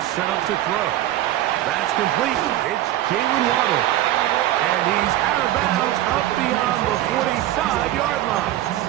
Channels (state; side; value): quieter; left; 14.0 dB